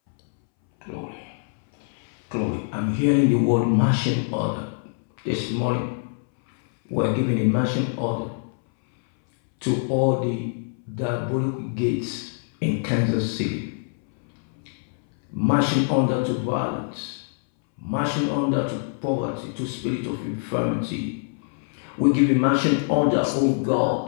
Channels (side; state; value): right; silent; 62 dB below the other